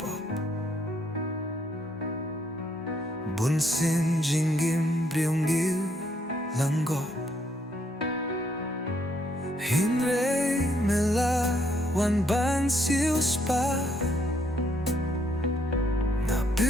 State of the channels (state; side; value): normal; both; correlation 0.71